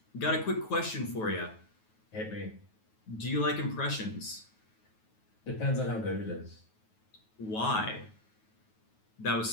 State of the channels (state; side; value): late; right; 9.3 ms